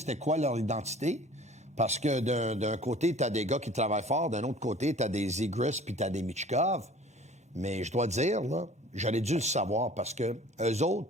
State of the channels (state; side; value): normal; both; correlation 0.47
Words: quoi leur identité. Parce que d'un côté, tu as des gars qui travaillent fort, d'un autre côté, tu as des Zegras puis tu as des Michkov. Mais je dois dire, là, j'aurais dû le savoir parce que eux autres,